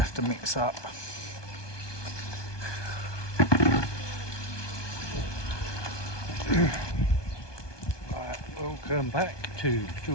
have to mix up. Welcome back to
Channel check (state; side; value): late; right; 1.2 ms